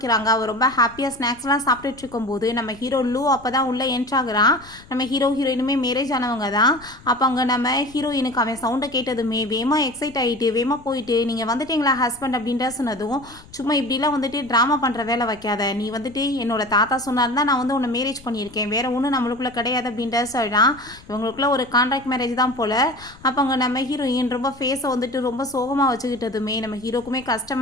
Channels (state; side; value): noise; left; rumble, 22 dB below the sound